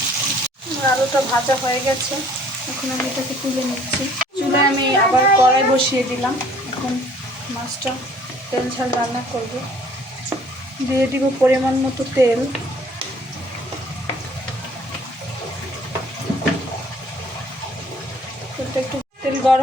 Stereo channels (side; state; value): both; normal; correlation 0.56